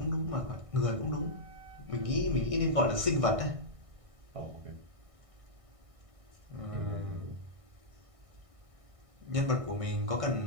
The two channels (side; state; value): left; late; 1.6 ms